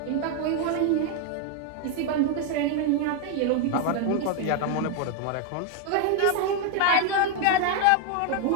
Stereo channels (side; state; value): both; different; correlation 0.01